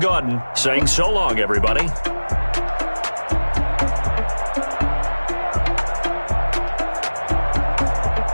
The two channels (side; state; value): both; inverted; correlation -1.00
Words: saying so long, everybody.